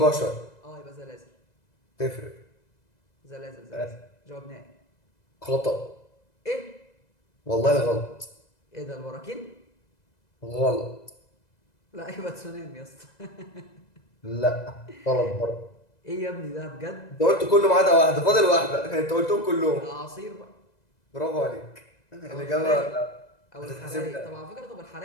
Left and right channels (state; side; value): late; right; 2.0 ms